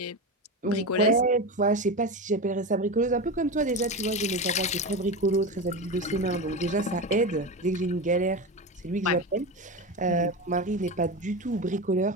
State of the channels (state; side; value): normal; both; correlation 0.21